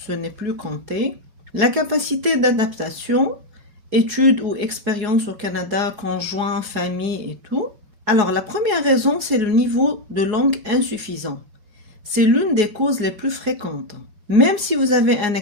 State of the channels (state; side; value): late; left; 4.8 ms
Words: n'est plus compté, la capacité d'adaptation, études ou expériences au Canada, conjoint, famille et tout. Alors la première raison, c'est le niveau de langue insuffisant. C'est l'une des causes les plus fréquentes. Même si vous avez un